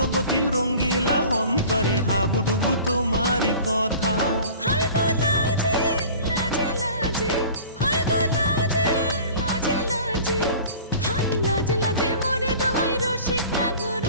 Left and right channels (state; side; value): inverted; both; correlation -0.44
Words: রঙ্গিলা অন্তরে হাবুডুবু তোমারি কথা। হায় গো লাজে লাজে লাজে, হায় গো লাজে লাজে লাজে, হায় লাজে লাজে মোরে দোহাই রসিক নাগর